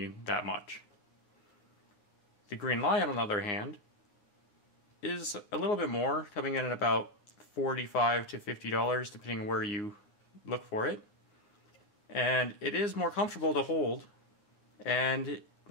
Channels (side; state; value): right; late; 9.7 ms